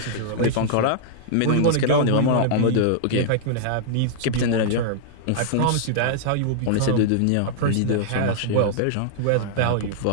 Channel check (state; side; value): different; both; correlation -0.01